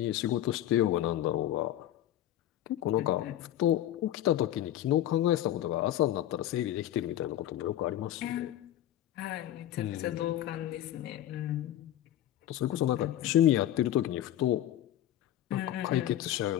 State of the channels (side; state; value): right; quieter; 12.5 dB